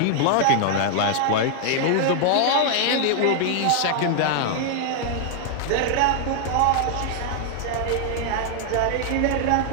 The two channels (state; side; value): different; both; correlation 0.00